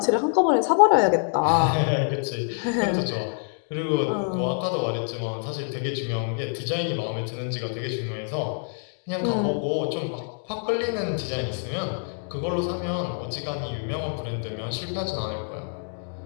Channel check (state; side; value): silent; right; 61 dB below the other